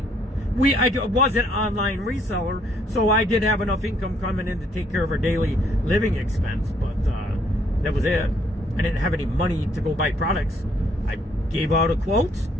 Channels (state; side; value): normal; both; correlation 0.67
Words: I was an online reseller, so I did have enough income coming in to take care of our daily living expense, but that was it. I didn't have any money to go buy products. I gave out a quote.